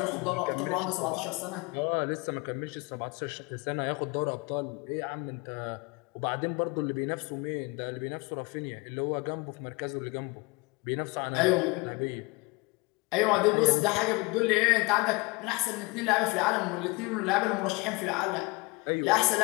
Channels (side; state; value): right; quieter; 26.5 dB